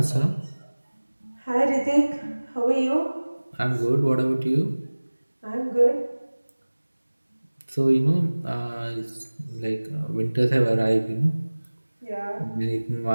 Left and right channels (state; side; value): inverted; both; correlation -1.00